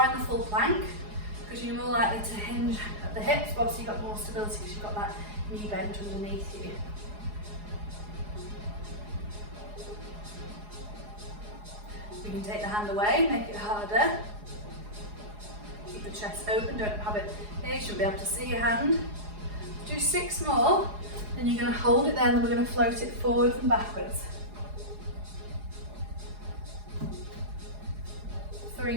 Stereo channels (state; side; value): late; left; 4.8 ms